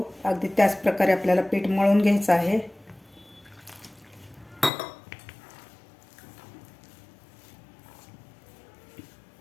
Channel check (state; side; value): drops out; right; at 4.7 s